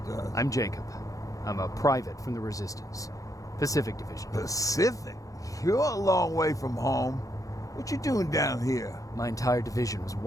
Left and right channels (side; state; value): right; late; 0.17 ms